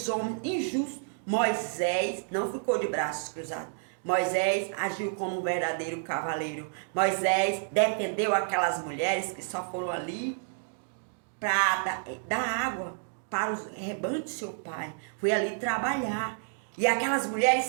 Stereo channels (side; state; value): left; silent; digital silence